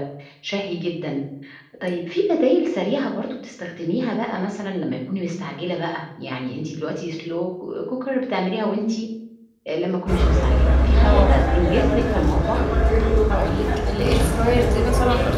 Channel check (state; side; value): identical; both; correlation 1.00